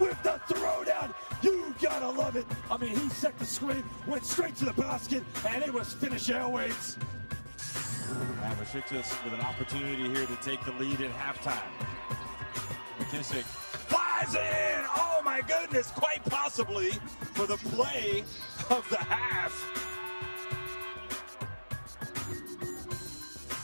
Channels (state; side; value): inverted; both; correlation -1.00